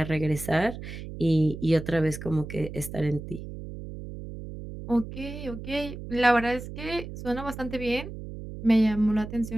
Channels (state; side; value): noise; right; hum, 10 dB below the sound